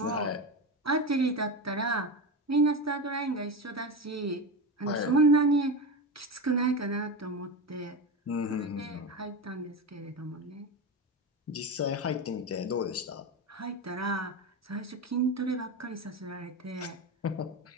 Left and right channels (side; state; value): both; normal; correlation 0.19